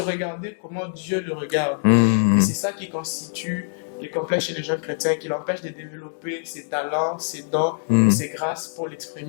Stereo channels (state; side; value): silent; right; digital silence